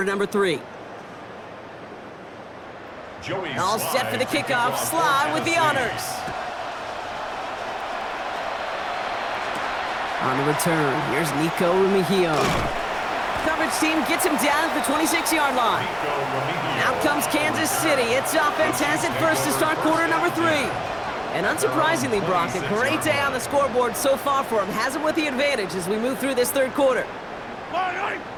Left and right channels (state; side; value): identical; both; correlation 1.00